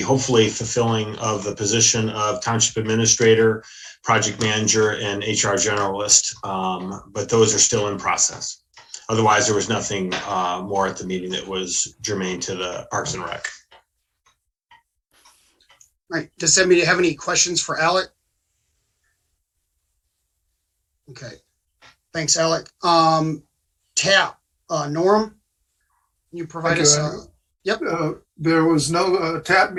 fulfilling of the position of Township Administrator, Project Manager, and HR Generalist, but those are still in process. Otherwise, there was nothing more at the meeting that was germane to the Parks and Rec. All right, does anybody have any questions for Alec? Okay, thanks, Alec. TAP, Norm, can you provide Thank us? you, Andrew. Yep. There was no TAP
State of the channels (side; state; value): both; identical; correlation 1.00